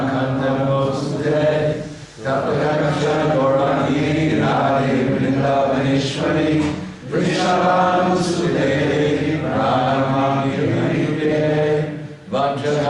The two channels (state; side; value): identical; both; correlation 1.00